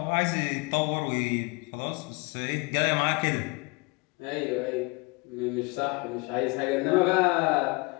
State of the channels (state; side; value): quieter; right; 27.0 dB